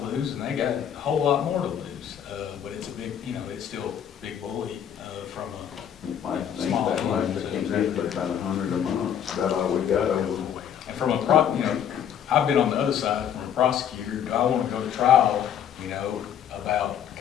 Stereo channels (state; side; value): quieter; right; 9.1 dB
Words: lose and they got a whole lot more to lose. But it's a big, you know, it's still a big bully, from a I think small that might team. be about $100 a month, that's all we got over. And from a you know, I've been on the other side from a prosecutor. Do I want to go to trial, you know, about